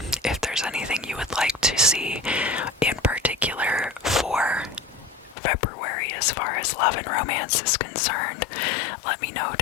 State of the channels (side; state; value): right; drops out; at 5.4 s